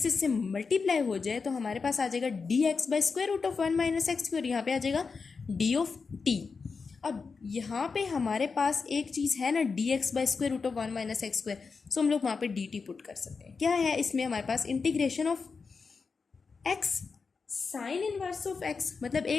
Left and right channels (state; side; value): quieter; right; 4.9 dB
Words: इससे मल्टीप्लाई हो जाए तो हमारे पास आ जाएगा d x by square root of 1 minus x square, यहाँ पे आ जाएगा डी ऑफ टी। अब यहाँ पे हमारे पास एक चीज़ है ना, d x by square root of 1 minus x square, so हम लोग वहाँ पे डी टी पुट कर सकते हैं। क्या है इसमें हमारे पास, integration of x sine inverse of x, मतलब